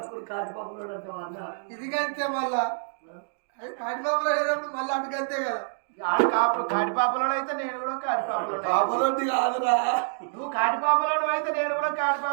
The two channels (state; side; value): silent; left; digital silence